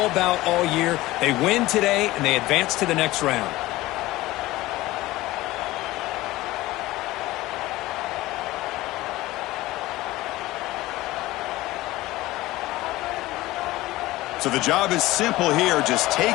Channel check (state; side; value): quieter; right; 18.1 dB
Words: about all year. They win today, and they advance to the next round. So the job is simple here. Just take